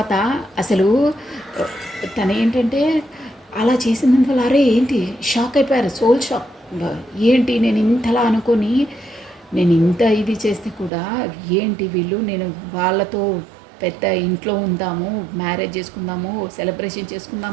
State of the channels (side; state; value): left; drops out; at 10.9 s